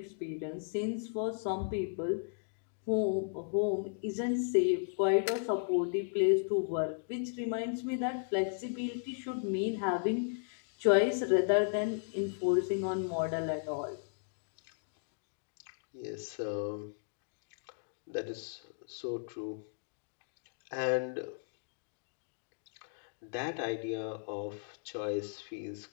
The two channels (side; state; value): right; silent; digital silence